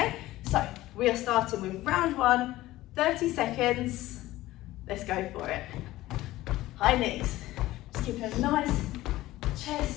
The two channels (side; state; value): right; quieter; 16.6 dB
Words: So we are starting with round 1, 30 seconds. Let's go for it. High knees. Just keep a nice